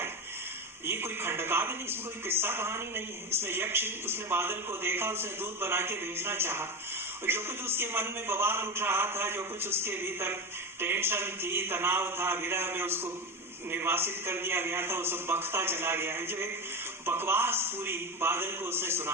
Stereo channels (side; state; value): both; normal; correlation 0.20